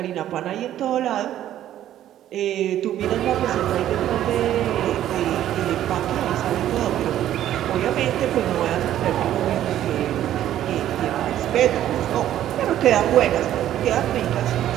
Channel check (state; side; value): quieter; left; 12.0 dB